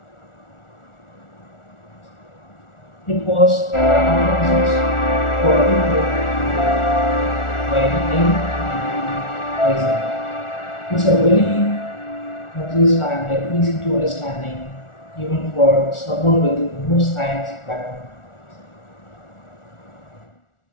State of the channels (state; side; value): late; right; 1.4 ms